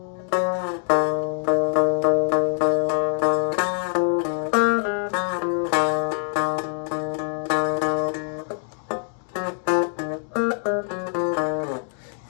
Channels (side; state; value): right; silent; 55 dB below the other